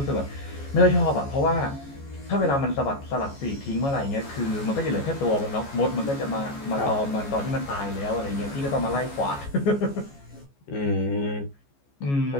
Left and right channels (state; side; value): late; right; 14 ms